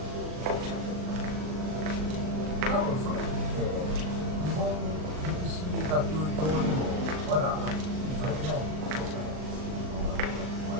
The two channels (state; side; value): late; left; 39 ms